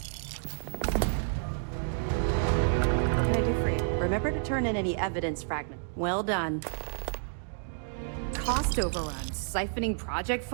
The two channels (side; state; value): left; silent; digital silence